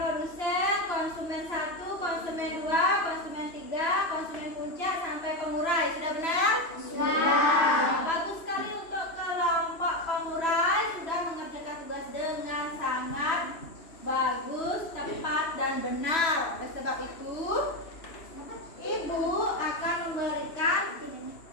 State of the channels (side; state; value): right; late; 3.0 ms